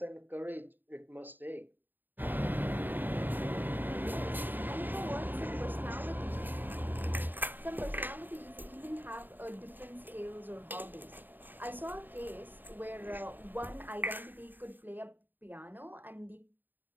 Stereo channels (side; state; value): left; late; 0.091 ms